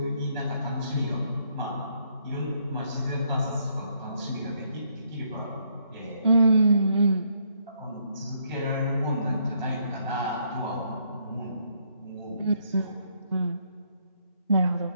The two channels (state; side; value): inverted; both; correlation -0.72